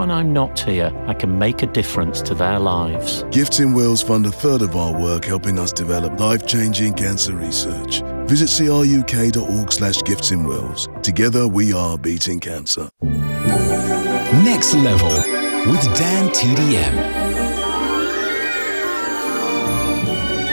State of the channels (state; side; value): inverted; both; correlation -1.00